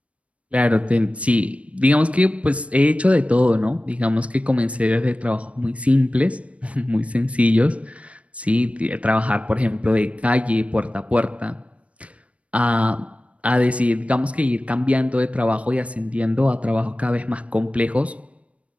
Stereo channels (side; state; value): left; late; 0.064 ms